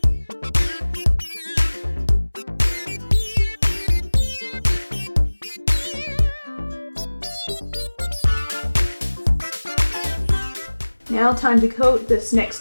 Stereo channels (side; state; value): both; inverted; correlation -1.00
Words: Now time to coat this